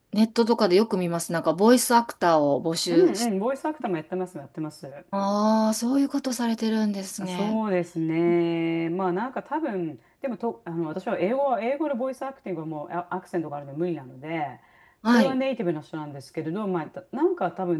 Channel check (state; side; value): identical; both; correlation 1.00